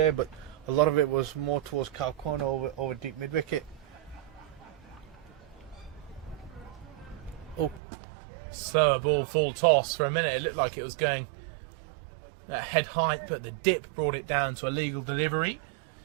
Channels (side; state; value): left; drops out; at 7.8 s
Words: but a lot of it was more towards cow corner over deep mid wicket. Oh, slower ball, full toss. For a minute, it looked like it was going at head height, but the dip brought it down to a legal delivery.